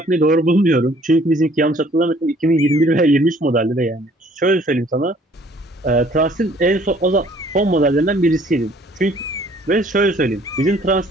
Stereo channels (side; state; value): both; normal; correlation 0.58